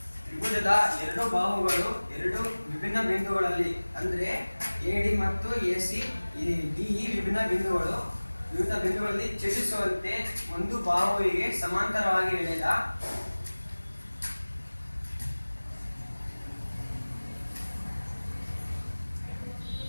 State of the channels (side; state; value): both; inverted; correlation -1.00